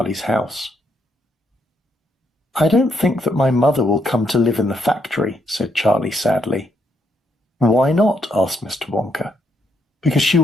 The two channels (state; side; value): normal; both; correlation 0.75